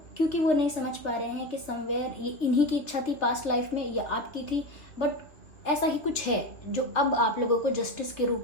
क्योंकि वो नहीं समझ पा रहे हैं कि समवेयर ये इन्हीं की इच्छा थी पास्ट लाइफ में या आपकी थी, बट ऐसा ही कुछ है जो अब आप लोगों को जस्टिस के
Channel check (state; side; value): late; right; 2.8 ms